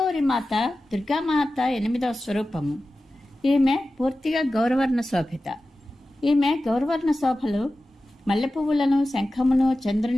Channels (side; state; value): both; normal; correlation 0.94